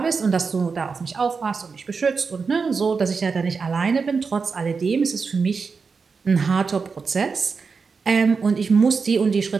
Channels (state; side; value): quieter; left; 5.1 dB